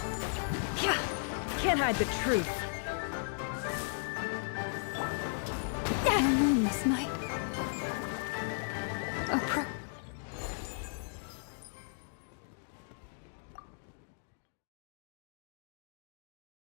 Can't hide the truth. This night.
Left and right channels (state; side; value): silent; right; digital silence